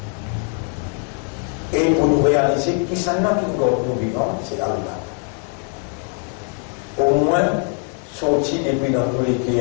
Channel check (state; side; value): quieter; right; 36.5 dB